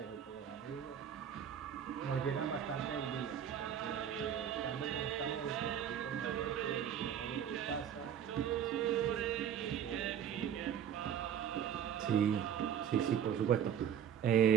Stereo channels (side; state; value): left; quieter; 9.0 dB